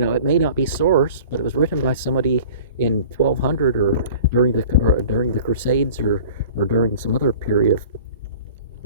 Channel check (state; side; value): inverted; both; correlation -0.44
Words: may not be source, but it was written by somebody in 1200 or during the Crusades or during some other period